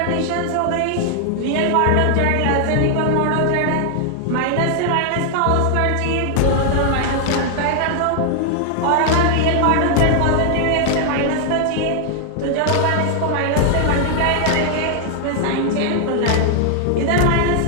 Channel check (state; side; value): different; both; correlation 0.00